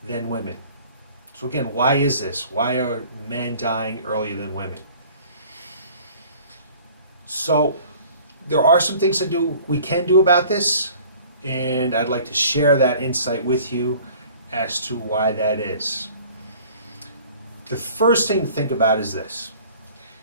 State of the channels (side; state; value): both; inverted; correlation -0.50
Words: than women. So again, why is this? Why are men dying earlier than women? So there are some things we can do about this, and I'd like to share that insight with you as to why that is. The first thing to think about is this.